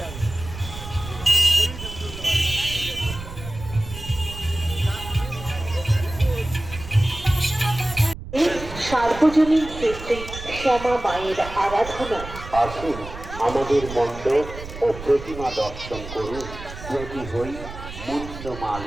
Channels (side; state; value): right; noise; rumble, 12 dB below the sound